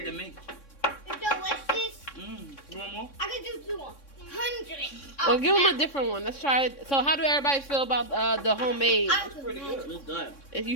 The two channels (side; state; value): right; late; 3.6 ms